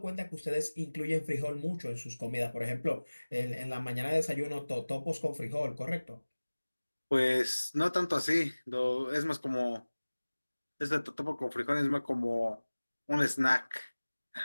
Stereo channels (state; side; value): inverted; both; correlation -1.00